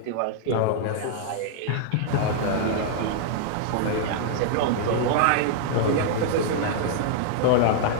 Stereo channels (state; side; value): different; both; correlation -0.01